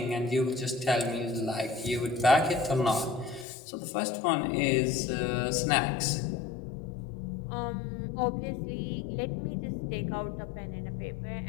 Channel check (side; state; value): right; drops out; at 3.5 s